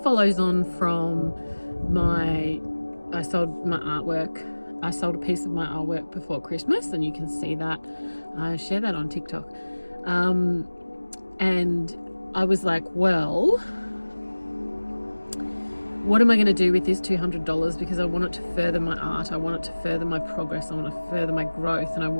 on from I sold my artwork. I sold a piece of my artwork before Christmas, and you can see that. I share that on TikTok. And I was like, well, what am I going to do with this $200? Because I want it to further my art. I want it to further my progress. I want to further my growth, and I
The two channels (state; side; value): inverted; both; correlation -1.00